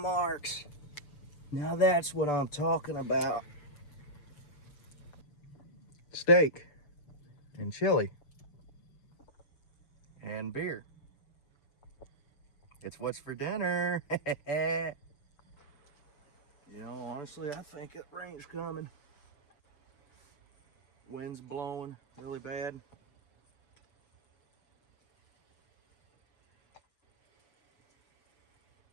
Now that's what I'm talking about. Steak and chili and beer. It's what's for dinner. You know, honestly, I think it rain's coming. Wind's blowing really bad.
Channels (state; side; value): late; right; 6.9 ms